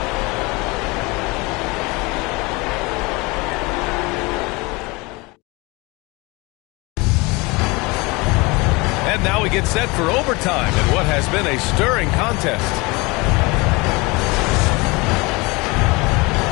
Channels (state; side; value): quieter; right; 25.5 dB